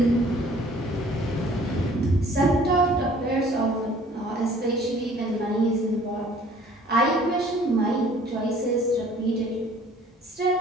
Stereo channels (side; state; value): both; normal; correlation 0.54